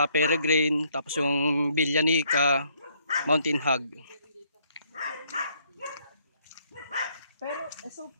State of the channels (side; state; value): both; inverted; correlation -0.68